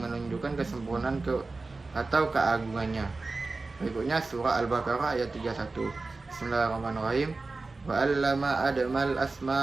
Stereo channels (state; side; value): quieter; left; 3.6 dB